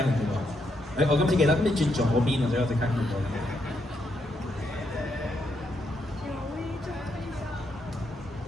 唔到？我今次記得，咁你轉左邊啊，所以我即刻見到。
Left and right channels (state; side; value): normal; both; correlation 0.79